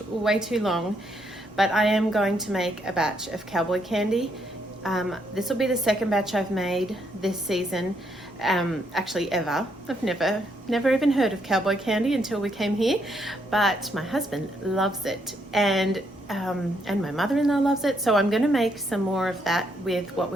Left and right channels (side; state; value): both; normal; correlation 0.75